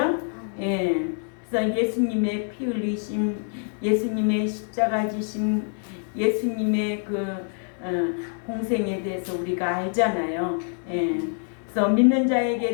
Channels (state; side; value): silent; right; 57 dB below the other